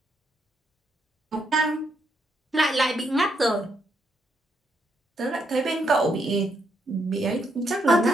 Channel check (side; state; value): both; normal; correlation 0.77